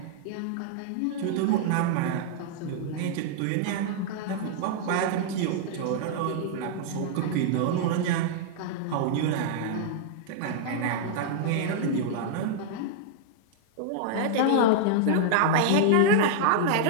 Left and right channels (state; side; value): different; both; correlation -0.01